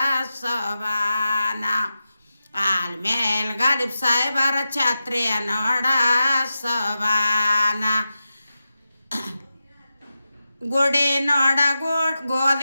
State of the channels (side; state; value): both; inverted; correlation -0.91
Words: ಸೋಬಾನ, ಆಲ್ಮೇಲೆ ಗಾಲಿಬ್ ಸಾಹೇಬರ ಛತ್ರಿಯ ನೋಡ ಸೋಬಾನ. ಗುಡಿ ನೋಡ